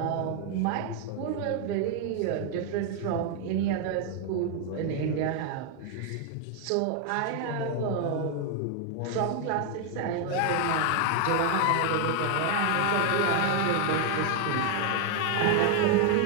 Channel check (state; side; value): different; both; correlation 0.01